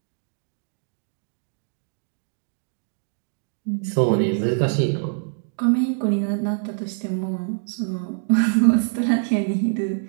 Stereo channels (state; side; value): silent; left; digital silence